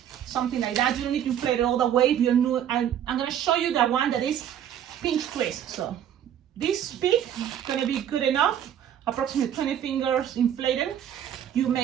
something like that. You don't need to inflate it all the way. If you're new, I'm gonna show you the one that is pinch twist. So this peak is gonna be good enough. Approximately 20 fingers inflated. You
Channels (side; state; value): left; quieter; 10.0 dB